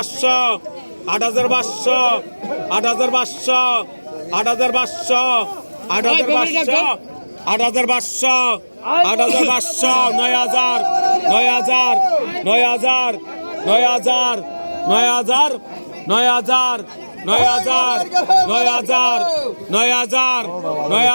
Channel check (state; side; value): inverted; both; correlation -1.00